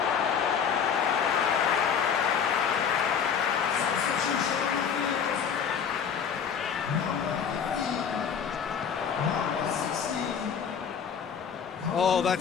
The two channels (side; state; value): right; quieter; 7.3 dB